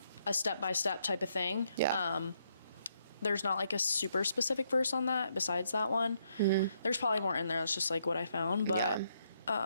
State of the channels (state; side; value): inverted; both; correlation -0.75